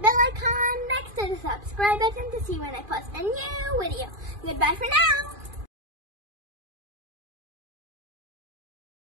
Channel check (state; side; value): late; left; 2.4 ms